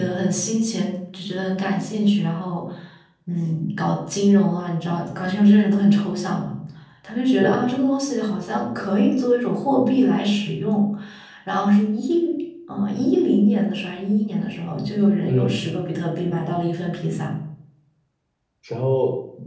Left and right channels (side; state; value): both; identical; correlation 1.00